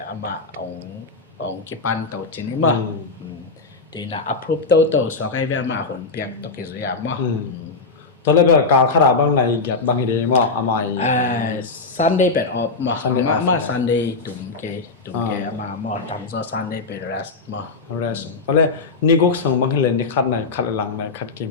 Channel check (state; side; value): quieter; right; 4.0 dB